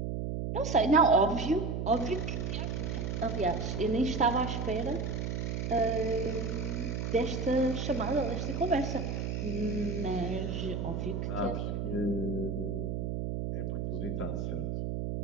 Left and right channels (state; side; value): noise; right; hum, 2 dB below the sound